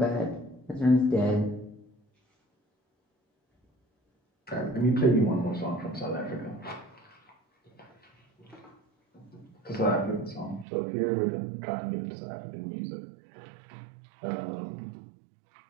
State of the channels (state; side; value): drops out; left; at 10.7 s